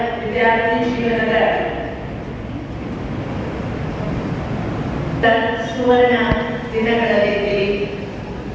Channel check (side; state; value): both; identical; correlation 1.00